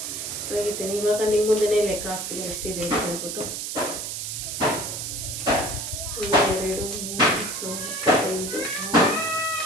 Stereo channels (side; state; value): right; noise; hiss, 5 dB below the sound